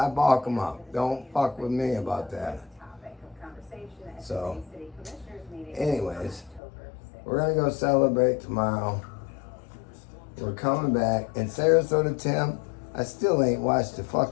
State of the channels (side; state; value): right; drops out; at 6.6 s